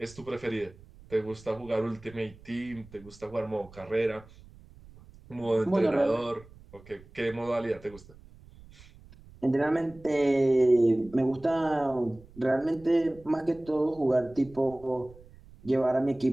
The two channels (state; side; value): noise; right; rumble, 22 dB below the sound